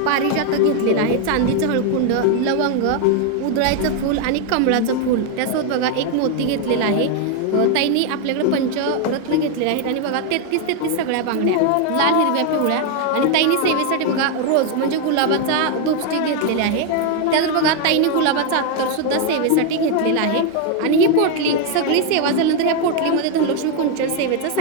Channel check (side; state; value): both; different; correlation 0.01